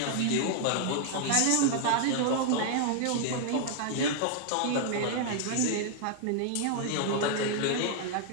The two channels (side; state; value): both; different; correlation 0.00